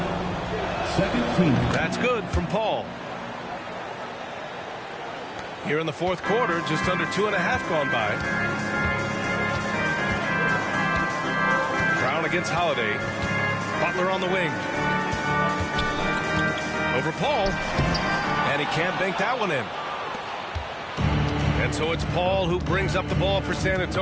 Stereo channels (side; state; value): both; identical; correlation 1.00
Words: Second team. That's good from Paul. Here in the fourth quarter, just under 2.5 gone by. Brown against Holiday. Butler on the wing. Over Paul. And he can't bank that one in. And so it's Paul who brings up the ball for San